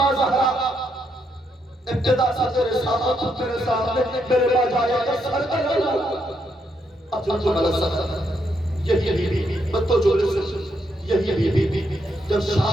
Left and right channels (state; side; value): normal; both; correlation 0.78